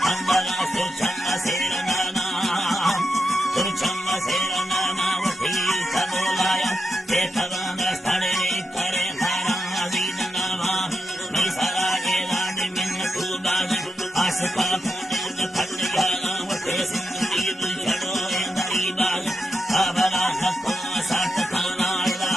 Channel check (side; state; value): both; normal; correlation 0.86